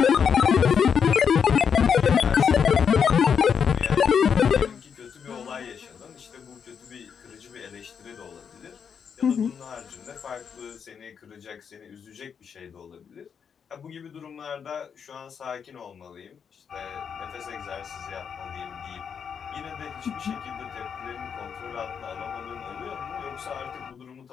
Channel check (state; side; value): quieter; right; 7.0 dB